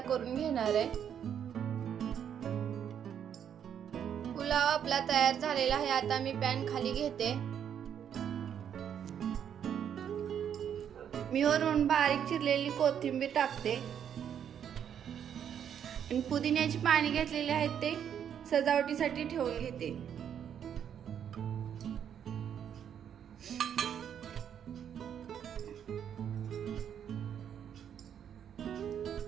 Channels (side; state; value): left; quieter; 8.8 dB